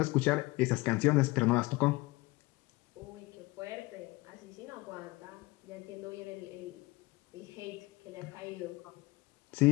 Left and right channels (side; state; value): right; quieter; 22.0 dB